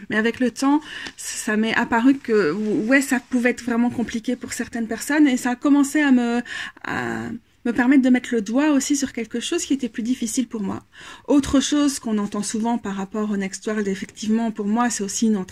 mais avec le temps, ça m'est apparu que ouais, ça pouvait être vraiment compliqué pour certaines personnes, et ça a commencé à me permettre de mettre le doigt aussi sur quelque chose qui était plus difficile pour moi. Autre chose qu'on entend souvent par rapport au Next World, effectivement, pour moi, c'est aussi une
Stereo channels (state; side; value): identical; both; correlation 1.00